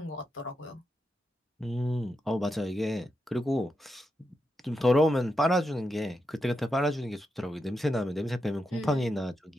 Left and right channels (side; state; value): both; normal; correlation 0.86